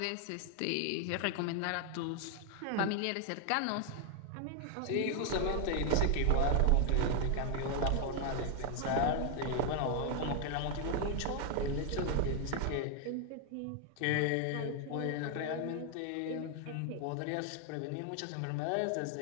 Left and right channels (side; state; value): both; different; correlation 0.00